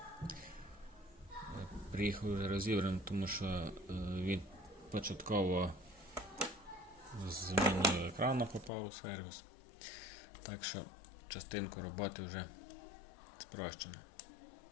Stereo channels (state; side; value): drops out; right; at 8.7 s